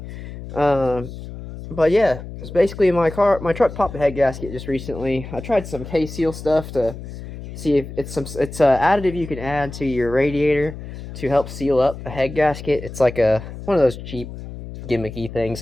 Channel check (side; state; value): left; noise; hum, 11 dB below the sound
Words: But yeah, it's basically my truck popped a head gasket just recently. I tried some K-Seal stuff to see if it's it's a additive you can add to your radiator to help seal up a head gasket. It's like one of those cheap gimmicky things